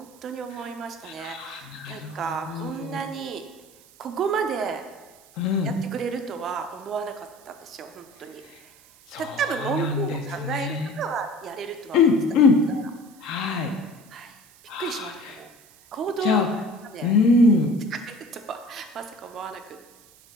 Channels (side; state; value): right; noise; hiss, 26 dB below the sound